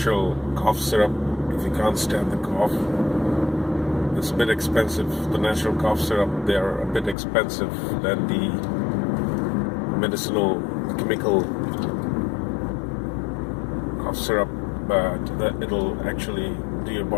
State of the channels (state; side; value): drops out; right; at 7.2 s